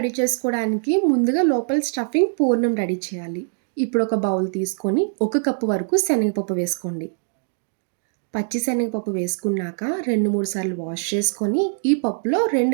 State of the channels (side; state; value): left; silent; digital silence